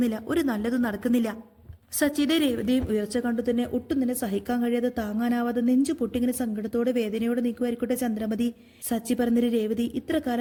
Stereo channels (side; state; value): both; identical; correlation 1.00